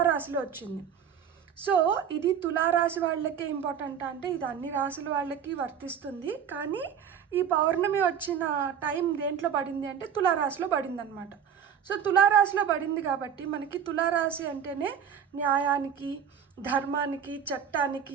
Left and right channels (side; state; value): left; quieter; 8.1 dB